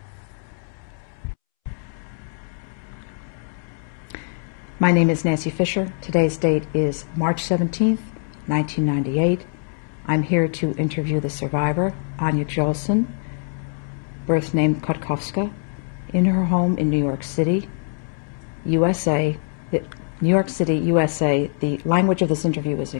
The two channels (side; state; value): right; silent; 63 dB below the other